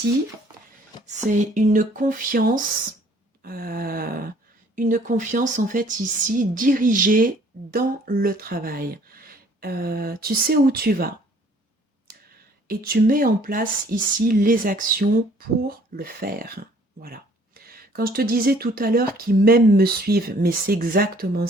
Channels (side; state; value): both; normal; correlation 0.58